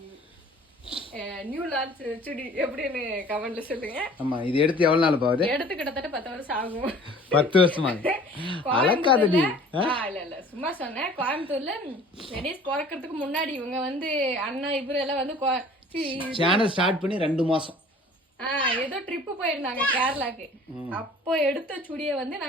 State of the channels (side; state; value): both; normal; correlation 0.49